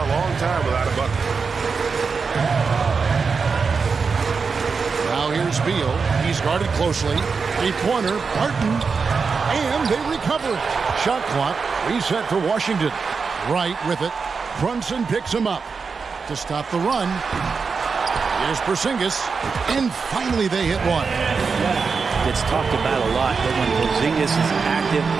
long time without a bucket. Now here's Beal. He's guarded closely. Three-pointer, Barton. And they recover it. Shot clock reset for Washington. Right with it. Brunson picks him up to stop the run. Here's Porzingis. And finally they hit one. It's talked about a lot that when Porzingis is active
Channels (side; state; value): left; quieter; 5.1 dB